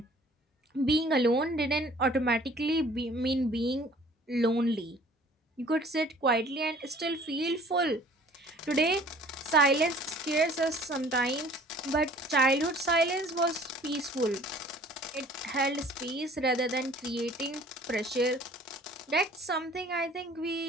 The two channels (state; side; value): normal; both; correlation 0.52